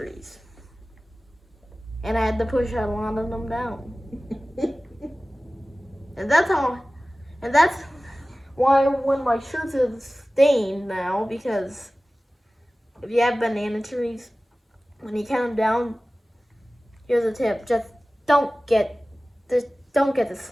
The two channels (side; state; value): both; normal; correlation 0.97